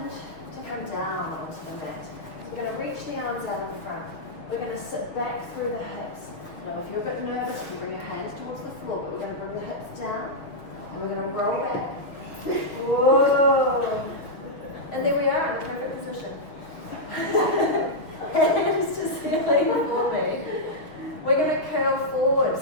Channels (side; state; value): right; late; 6.4 ms